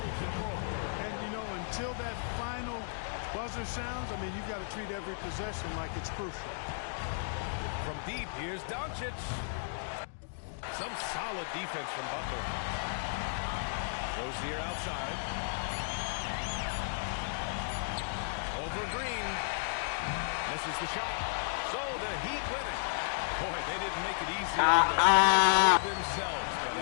control. And, you know, until that final buzzer sounds, I mean, you've got to treat every possession like it's crucial. From deep, here's Doncic. Some solid defense from Butler. Rozier outside. Over Green. Misses the shot. So the Heat win it. Boy, they didn't make it easy on themselves, but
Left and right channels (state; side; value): silent; right; digital silence